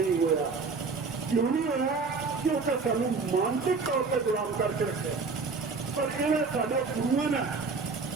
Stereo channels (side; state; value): left; quieter; 4.5 dB